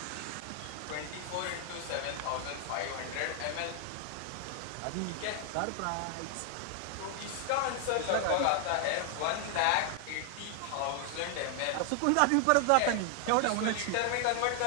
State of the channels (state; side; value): different; both; correlation 0.00